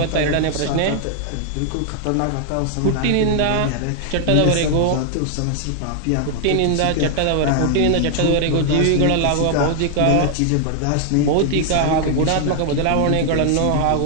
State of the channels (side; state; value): both; different; correlation 0.00